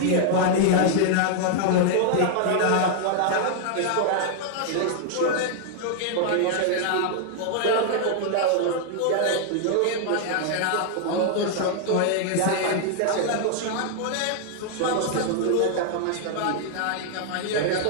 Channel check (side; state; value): both; different; correlation 0.00